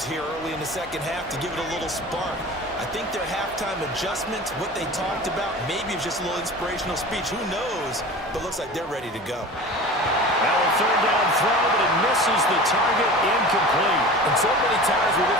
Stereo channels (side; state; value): both; normal; correlation 0.36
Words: here early in the second half to give it a little spark. I think their halftime adjustments, what they talked about, maybe it's just a little inspirational speech. Who knows? But looks like they're ready to go. Now a third down throw, but it misses the target, incomplete. And so many times we